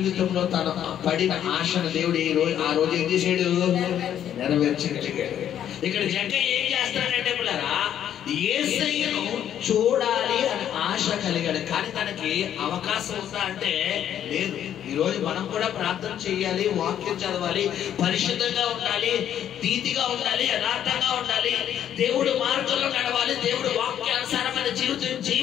తన పడిన ఆశను దేవుడు ఆ రోజు ఏం చేశాడు? నెరవేర్చగలిగాడు. ఇక్కడ జక్కయ్య ఏం చేస్తాడంటే పిల్లరా యేసయ్యను చూడాలి అని ఆశ కలిగాడు, కానీ తనకి అవకాశం ఉందా అంటే లేదు. ఈ రోజు మనం కూడా ప్రార్థన చేయాలి, వాక్యం చదవాలి, పరిశుద్ధంగా ఉండాలి, నీతిగా ఉండాలి, యథార్థంగా ఉండాలి, దేవుడు మార్గంలో నడవాలి, దేవుడు వాక్యానుసారమైన జీవితం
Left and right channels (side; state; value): right; quieter; 10.2 dB